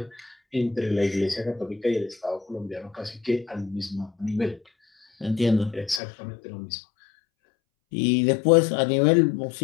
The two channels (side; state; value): right; drops out; at 6.0 s